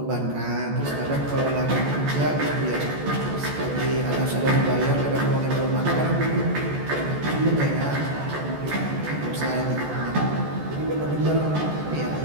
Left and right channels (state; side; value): late; left; 14 ms